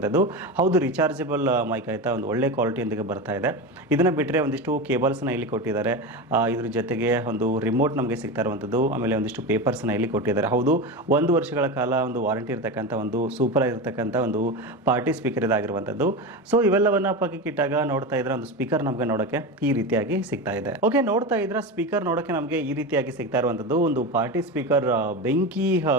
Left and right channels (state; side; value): normal; both; correlation 0.22